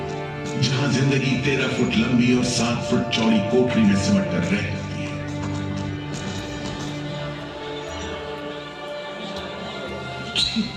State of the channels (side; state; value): both; identical; correlation 1.00